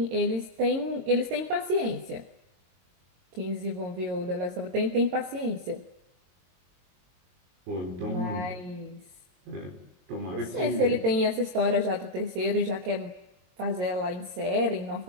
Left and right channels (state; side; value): late; left; 22 ms